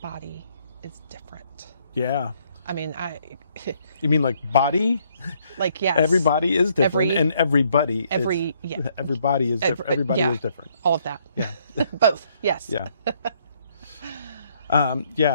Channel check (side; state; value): both; inverted; correlation -0.69